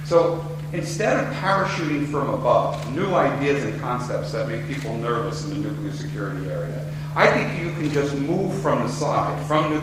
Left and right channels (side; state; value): both; identical; correlation 1.00